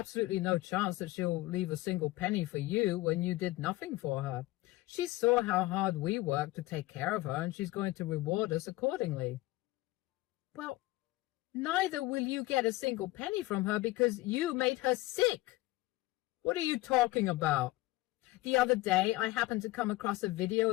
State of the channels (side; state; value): right; quieter; 19.0 dB